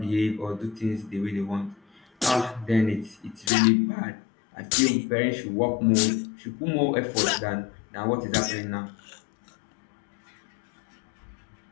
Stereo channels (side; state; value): right; drops out; at 3.5 s